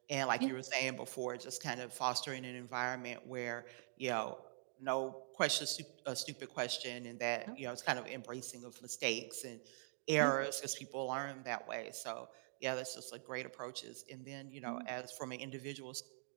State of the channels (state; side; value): silent; left; digital silence